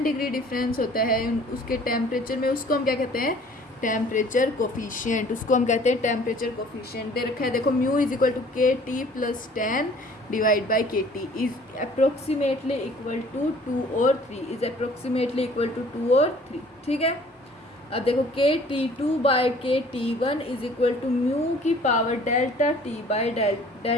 डिग्री डिफरेंस होता है उसके टेम्परेचर में, उसको हम क्या कहते हैं, टेम्परेचर कोफिशिएंट। उसको हम कहते हैं टेम्परेचर कोफिशिएंट। दे रखा है देखो, mu is equal to K T plus 10 divide by K T is approximately equal to 2 और 3, इज अप्रोक्सीमेटली इक्वल टू 2 और 3, ठीक है। अब देखो K T 2 by K T 1 is equal to mu की power delta T by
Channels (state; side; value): normal; both; correlation 0.53